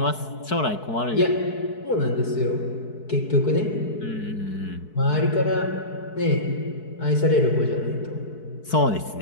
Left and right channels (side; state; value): right; late; 4.7 ms